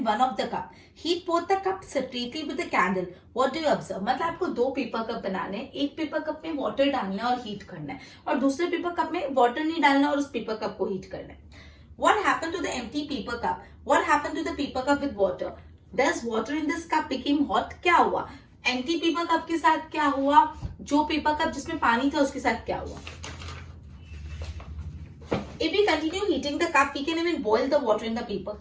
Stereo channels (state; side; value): identical; both; correlation 1.00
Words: one of the cup. Heat both the cups separately with a candle. What do you observe? मतलब आपको 2 paper cup बनाने हैं, एक पेपर कप में वाटर डालना है और हीट करना है, और दूसरे पेपर कप में वाटर नहीं डालना और उस पेपर कप को हीट करना है. What happened to the empty paper cup? What happened to the paper cup with water? Does water in this cup became hot? क्या हुआ? एम्प्टी पेपर कप के साथ क्या हुआ? जो पेपर कप जिसमें पानी था उसके साथ क्या हुआ? If we continue heating the cup, we can even boil the water in the paper